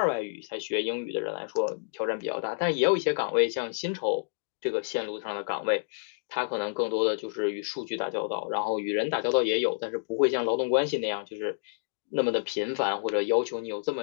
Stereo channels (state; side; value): silent; right; digital silence